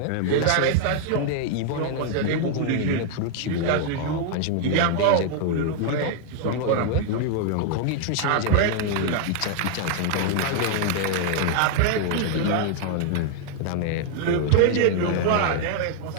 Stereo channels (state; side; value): different; both; correlation 0.00